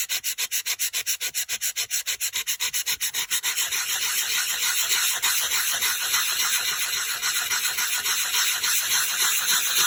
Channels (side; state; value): both; identical; correlation 1.00